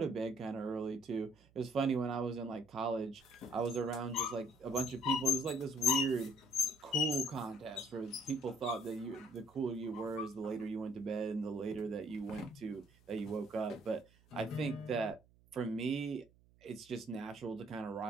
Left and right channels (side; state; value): right; noise; hum, 29 dB below the sound